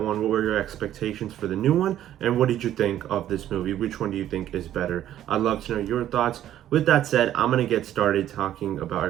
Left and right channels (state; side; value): quieter; left; 11.9 dB